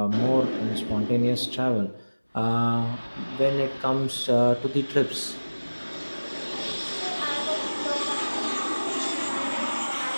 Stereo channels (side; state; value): both; inverted; correlation -1.00